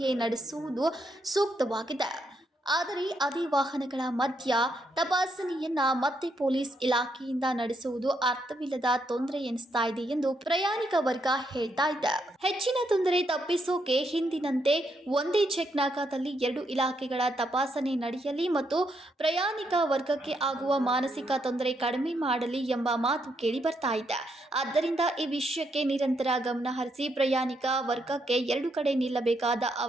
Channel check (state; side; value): normal; both; correlation 0.77